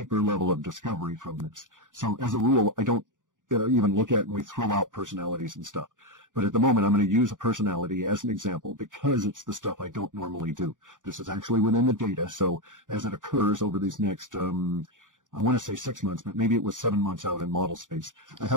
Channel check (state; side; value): late; left; 0.88 ms